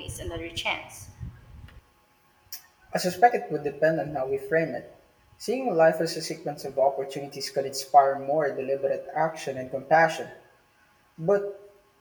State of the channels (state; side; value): identical; both; correlation 1.00